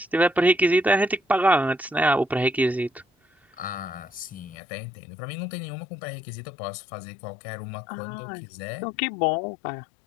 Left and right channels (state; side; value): drops out; right; at 4.5 s